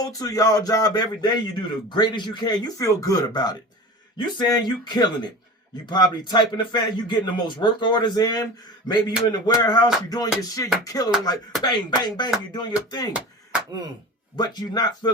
to y'all job every day. You do the greatest you can. You feel good about it. You saying you killing it. You probably typing the fan, you getting the most work orders in. Maybe you in the warehouse, you doing your shit, you killing like bang, bang, bang, you doing your thing. But you're not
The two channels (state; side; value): normal; both; correlation 0.34